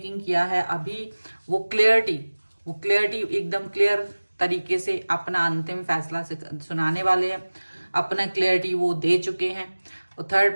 किया है। अभी वो क्लियरिटी एकदम क्लियर तरीके से अपना अंतिम फैसला सुनाने वाले हैं। अपना क्लियरिटी वो दे चुके हैं, और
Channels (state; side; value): inverted; both; correlation -1.00